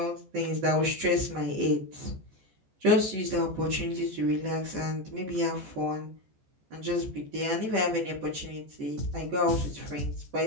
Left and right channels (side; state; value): left; late; 14 ms